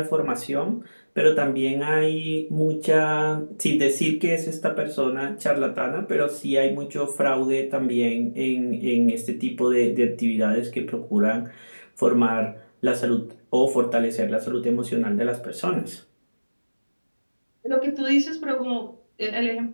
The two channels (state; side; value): inverted; both; correlation -1.00